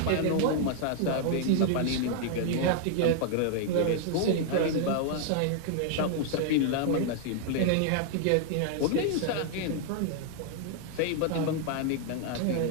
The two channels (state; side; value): different; both; correlation -0.01